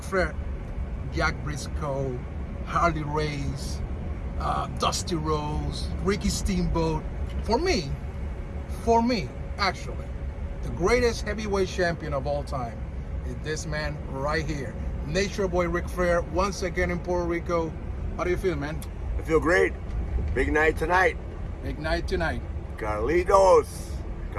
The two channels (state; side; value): identical; both; correlation 1.00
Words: Flair, Jack Briscoe, Harley Race, Dusty Rhodes, Ricky Steamboat. For me, actually, the greatest heavyweight champion of all time is this man right here, Nature Boy Ric Flair, once again in Puerto Rico. How do you feel, man? I feel great. Big night tonight. Big night tonight. Carlos